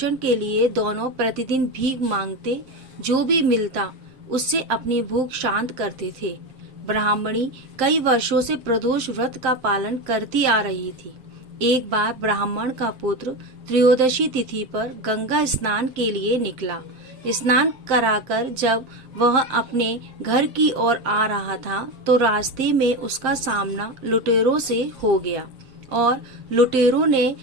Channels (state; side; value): late; left; 7.1 ms